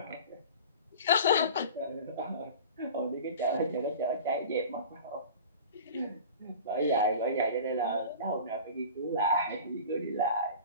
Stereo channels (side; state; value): both; inverted; correlation -0.38